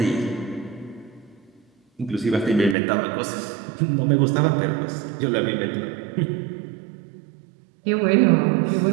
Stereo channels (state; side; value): drops out; left; at 2.8 s